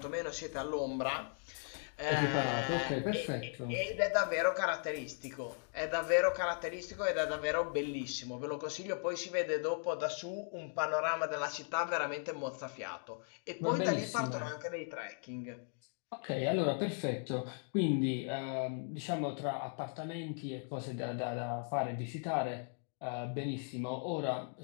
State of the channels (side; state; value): right; silent; 53 dB below the other